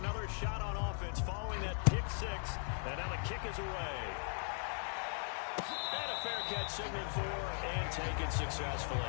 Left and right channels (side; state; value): right; silent; 52 dB below the other